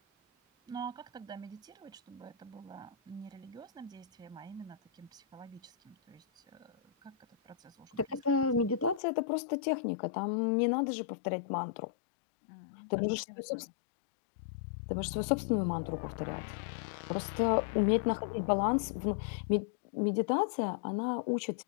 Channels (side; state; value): right; drops out; at 9.0 s